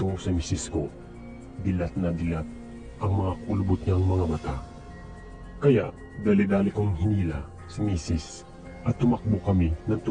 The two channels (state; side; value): identical; both; correlation 1.00